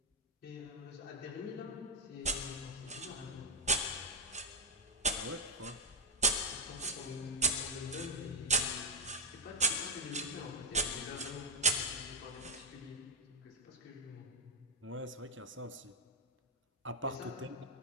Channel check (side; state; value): both; normal; correlation 0.01